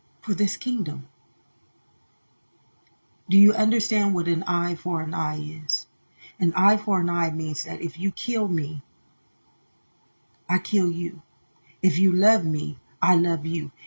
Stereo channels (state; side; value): inverted; both; correlation -1.00